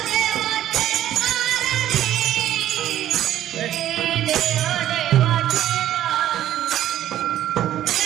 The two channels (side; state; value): left; quieter; 12.3 dB